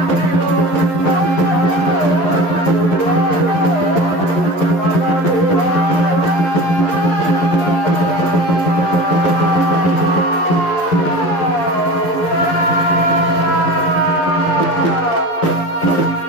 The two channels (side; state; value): right; late; 11 ms